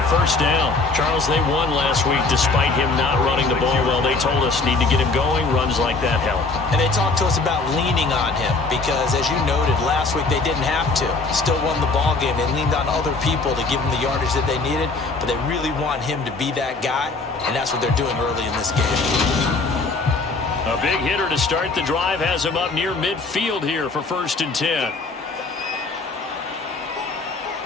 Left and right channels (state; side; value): quieter; right; 3.8 dB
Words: First down. Charles, they won last week despite him not running the ball well. They told us need to get him going. Runs like that help. And they talked to us about leaning on him because, as you noted, last week they didn't have to. Still won the ball game. They leaned on other people to give them the yardage that they needed, but they really want him to be that guy, and that's what they're doing early in this game. A big hitter to start the drive has him up near midfield here for 1st and 10.